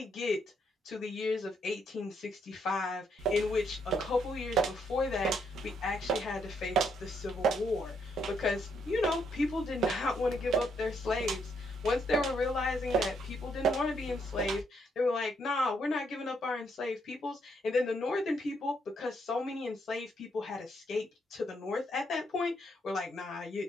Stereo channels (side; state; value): both; normal; correlation 0.74